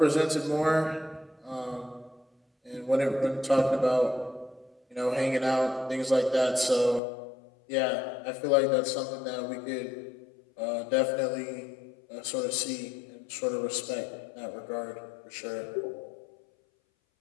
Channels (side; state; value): right; drops out; at 7.0 s